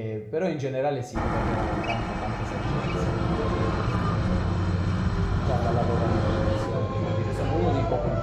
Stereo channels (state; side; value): identical; both; correlation 1.00